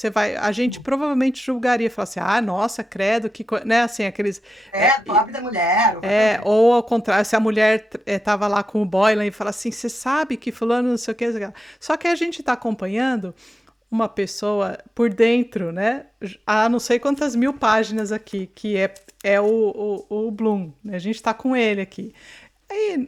vai, a gente provavelmente julgaria, falar assim, nossa, credo, né? Assim, aqueles pobre da mulher, ou qualquer coisa. ou ao contrário, se a mulher tava lá com o Boylan e fala assim, você sabe que fulano não sei o que, só que a gente está acompanhando uma pessoa por dentro, né? Há não sei quantas mil páginas aqui, que é o Bloom, né? A gente está com ele aqui.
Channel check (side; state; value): both; normal; correlation 0.92